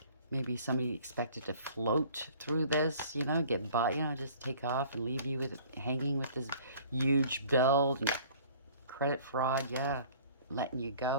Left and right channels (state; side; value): inverted; both; correlation -0.51